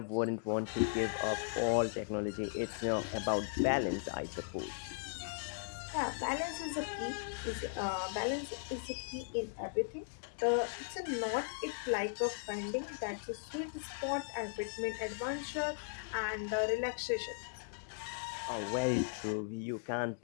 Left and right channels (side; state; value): right; silent; digital silence